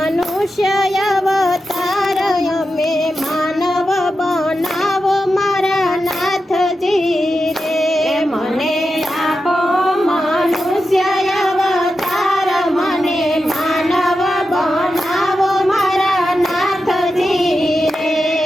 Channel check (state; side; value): normal; both; correlation 0.90